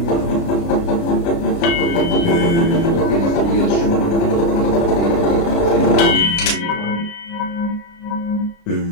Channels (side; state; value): right; late; 29 ms